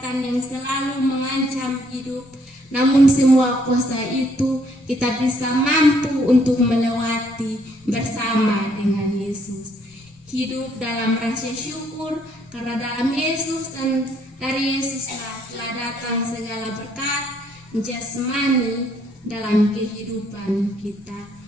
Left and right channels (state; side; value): noise; left; rumble, 30 dB below the sound